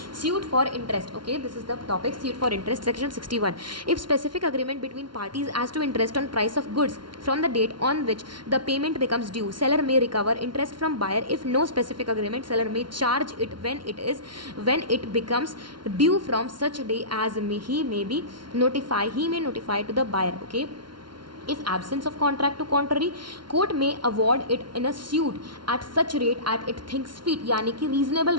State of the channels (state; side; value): late; left; 0.72 ms